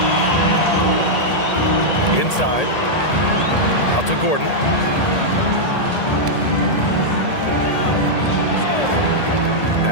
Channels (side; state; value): right; late; 1.8 ms